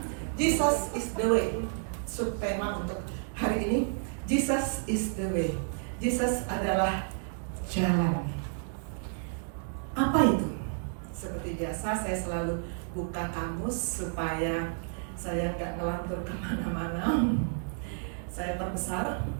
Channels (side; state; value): left; silent; digital silence